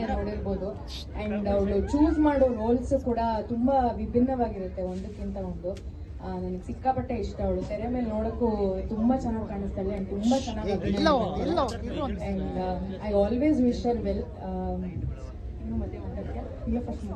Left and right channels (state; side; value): identical; both; correlation 1.00